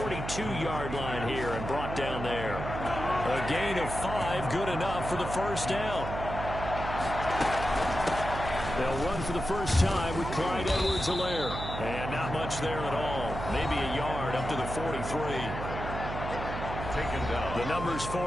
line here and brought down there. A gain of 5, good enough for the first down. They'll run for the first time with Clyde Edwards-Helaire. And not much there at all. Maybe a yard up to the 43. Taken down. The numbers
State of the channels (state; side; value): noise; right; hum, 6 dB below the sound